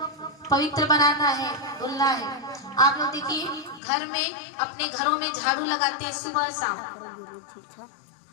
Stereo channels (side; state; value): right; drops out; at 3.8 s